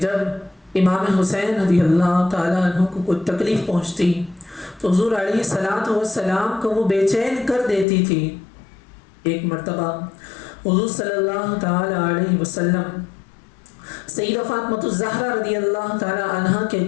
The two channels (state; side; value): drops out; right; at 7.9 s